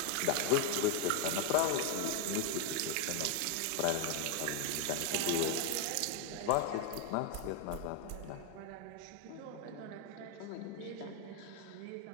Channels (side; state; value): both; different; correlation 0.01